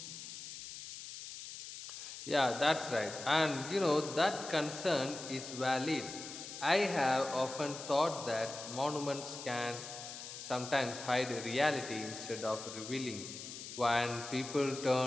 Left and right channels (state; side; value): noise; left; hiss, 10 dB below the sound